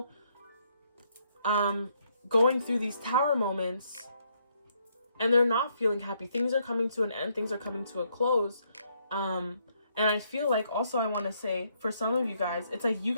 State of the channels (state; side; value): inverted; both; correlation -0.73